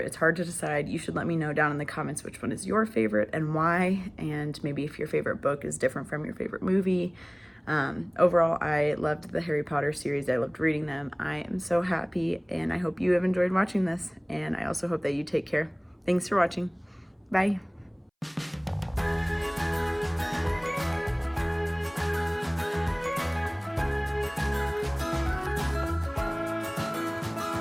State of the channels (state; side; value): identical; both; correlation 1.00